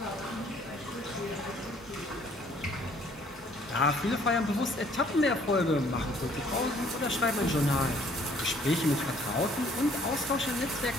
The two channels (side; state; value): both; normal; correlation 0.60